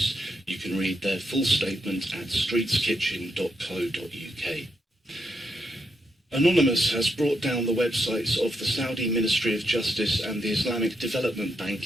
You can read their full statement at streetskitchen.co.uk. Anonymous has brought down the websites of the Saudi Ministry of Justice and the Islamic Development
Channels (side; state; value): both; normal; correlation 0.81